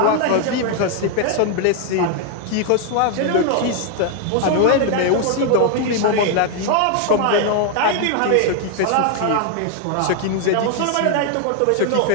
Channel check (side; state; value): both; different; correlation 0.00